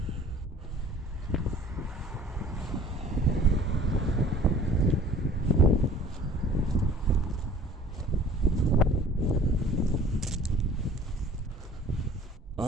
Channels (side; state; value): both; normal; correlation 0.50